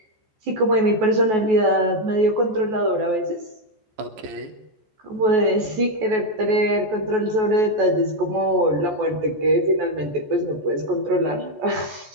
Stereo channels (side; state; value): left; late; 14 ms